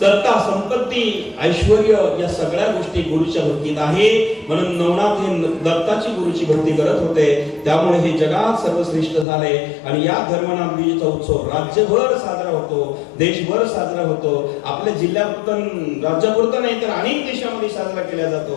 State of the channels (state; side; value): drops out; right; at 9.2 s